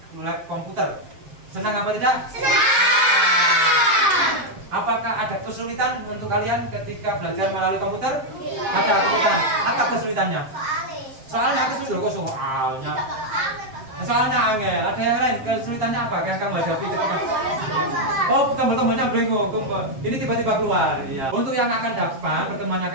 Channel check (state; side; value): late; left; 7.6 ms